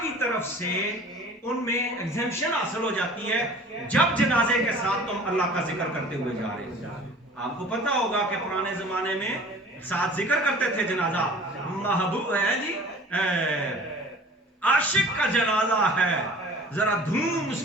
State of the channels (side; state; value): both; normal; correlation 0.46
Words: کی طرف سے ان میں ایگزیمشن حاصل ہو جاتی ہے جب جنازے کے ساتھ تم اللہ کا ذکر کرتے ہوئے جا رہے ہو۔ آپ کو پتا ہوگا کہ پرانے زمانے میں ساتھ ذکر کرتے تھے جنازہ، محبوب ہے جی عاشق کا جنازہ ہے، ذرا دھوم